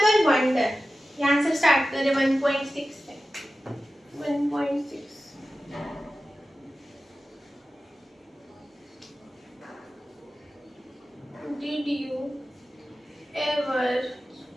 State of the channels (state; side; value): normal; both; correlation 0.94